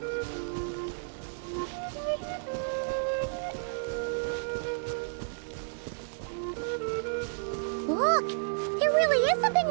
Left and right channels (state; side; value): silent; left; 57 dB below the other